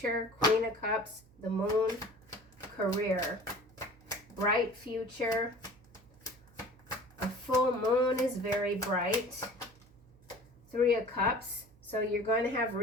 Queen of Cups. The Moon. Career. Bright future. A full moon is very bright. Three of Cups. So you're going to have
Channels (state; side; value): noise; right; hum, 26 dB below the sound